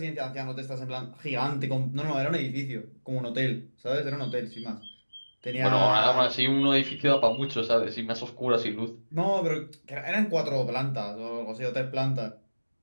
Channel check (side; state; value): both; inverted; correlation -1.00